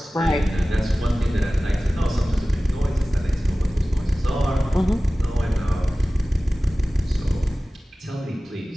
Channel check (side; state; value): both; normal; correlation 0.97